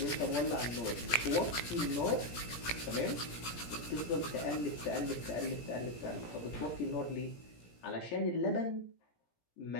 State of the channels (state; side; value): late; right; 17 ms